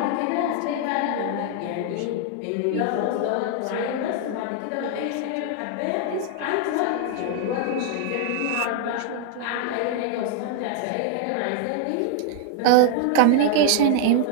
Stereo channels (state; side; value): different; both; correlation 0.00